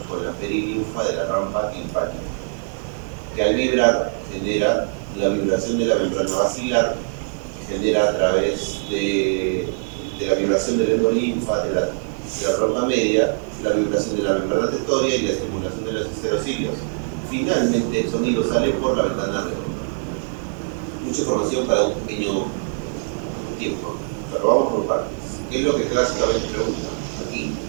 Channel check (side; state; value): left; silent; digital silence